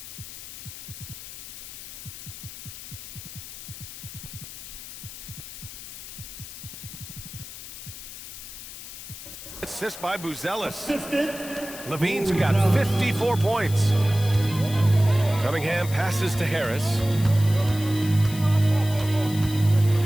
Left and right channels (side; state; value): left; noise; hiss, 12 dB below the sound